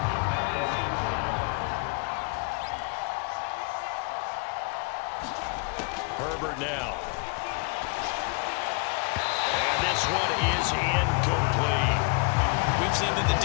Herbert now. This one is incomplete. We've seen that the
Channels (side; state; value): right; quieter; 33.0 dB